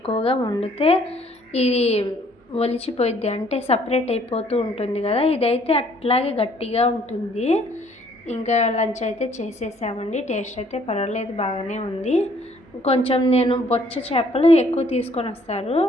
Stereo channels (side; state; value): both; normal; correlation 0.62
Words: వండితే ఇది ఒలిచిపోయిద్ది, అంటే సపరేట్ అయిపోతూ ఉంటుంది కదా. ఇదైతే అట్లాగే గట్టిగా ఉంటుంది. ఇంకా లంచ్ అయితే చేసేసామండి. టేస్ట్ అయితే పర్వాలేదు, బాగానే ఉంది. కొంచెం నేను బొచ్చ చేపలు ఎక్కువ తీసుకొని వస్తారు,